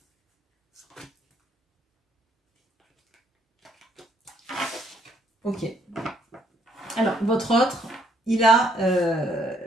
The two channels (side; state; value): both; normal; correlation 0.68